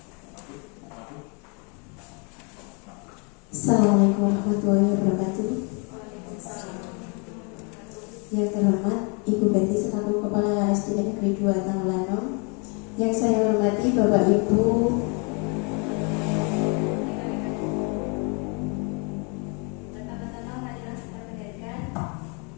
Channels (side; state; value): right; quieter; 34.6 dB